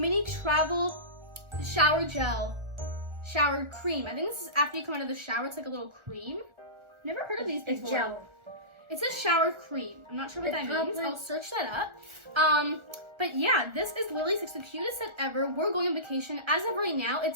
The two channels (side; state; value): left; late; 1.4 ms